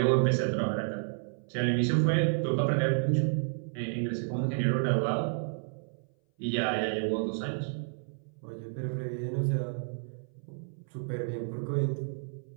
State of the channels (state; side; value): silent; left; 57 dB below the other